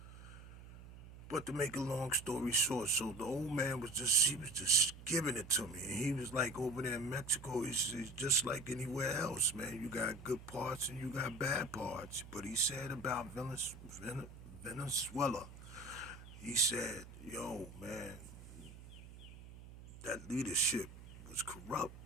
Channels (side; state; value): right; noise; hum, 16 dB below the sound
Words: But to make a long story short, so the old man he was just giving it to me. And he was like, over there in Mexico, it's just like anywhere else, man. You got good parts and you got bad parts. But he said about Venezuela, he said, yo, man, that leadership was corrupt.